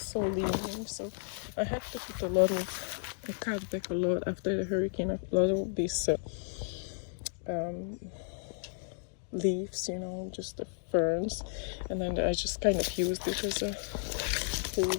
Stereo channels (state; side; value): silent; right; digital silence